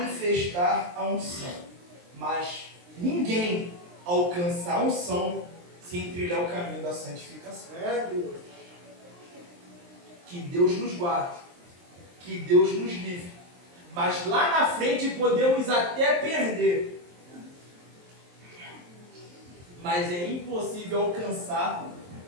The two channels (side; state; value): left; late; 23 ms